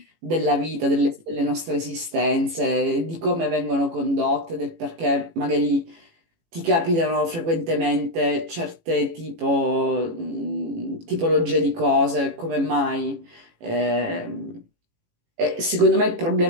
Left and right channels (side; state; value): left; late; 18 ms